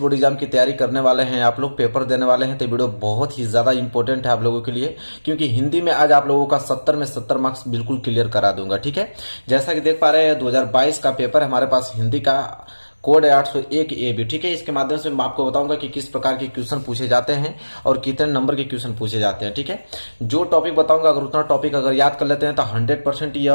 एग्जाम की तैयारी करने वाले हैं, आप लोग पेपर देने वाले हैं, तो वीडियो बहुत ही ज्यादा इंपॉर्टेंट है आप लोगों के लिए, क्योंकि हिंदी में आज आप लोगों का 70 में 70 मार्क्स बिल्कुल क्लियर करा दूंगा। ठीक है, जैसा कि देख पा रहे हैं 2022 का पेपर हमारे पास हिंदी का कोड है 801 ए बी। ठीक है, इसके माध्यम से मैं आपको बताऊंगा कि किस प्रकार के क्वेश्चन पूछे जाते हैं और कितने नंबर के क्वेश्चन पूछे जाते हैं। ठीक है, जो टॉपिक बताऊंगा अगर उतना टॉपिक अगर याद कर लेते हैं तो 100%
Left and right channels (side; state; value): both; inverted; correlation -1.00